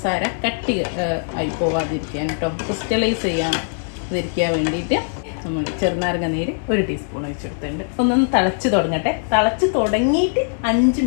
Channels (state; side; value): silent; right; digital silence